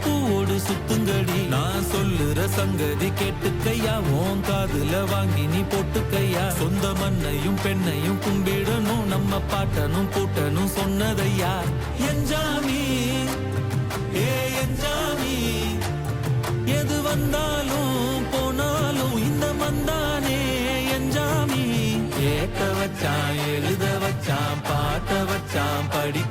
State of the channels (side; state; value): both; identical; correlation 1.00